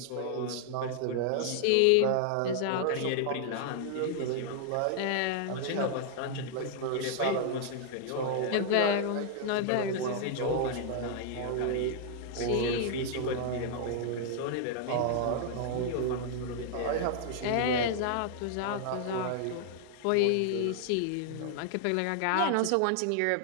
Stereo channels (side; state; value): both; different; correlation 0.00